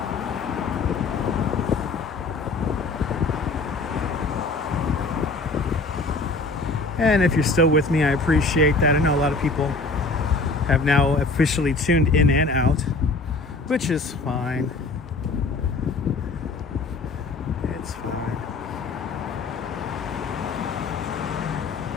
And if you're still with me, I appreciate that. I know a lot of people have now officially tuned in and out, which is fine. It's fine.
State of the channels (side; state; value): right; quieter; 3.6 dB